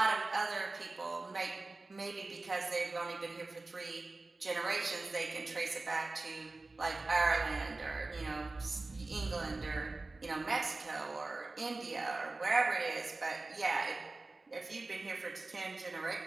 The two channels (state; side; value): quieter; left; 3.3 dB